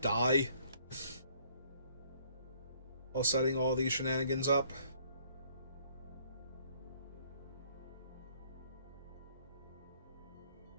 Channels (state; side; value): inverted; both; correlation -0.62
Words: die while setting all these shenanigans up.